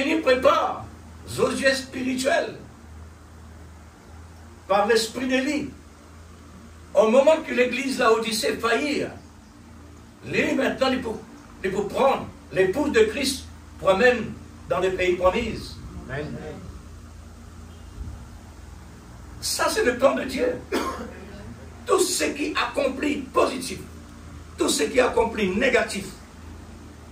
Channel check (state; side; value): identical; both; correlation 1.00